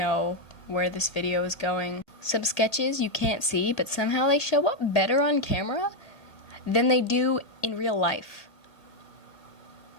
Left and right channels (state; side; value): late; right; 1.9 ms